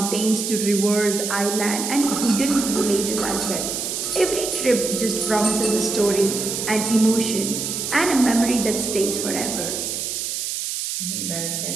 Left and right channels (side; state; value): right; noise; hiss, 3 dB below the sound